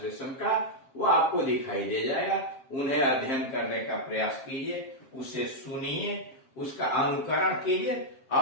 का, वो आपको दिखाई दे जाएगा। उन्हें अध्ययन करने का प्रयास कीजिए, उसे सुनिए, उसका अनुकरण कीजिए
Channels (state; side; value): late; right; 7.5 ms